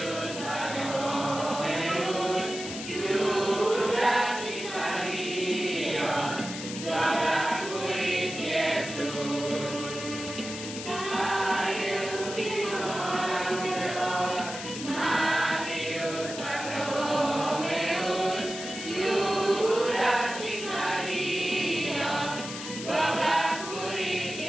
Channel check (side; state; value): left; noise; hiss, 9 dB below the sound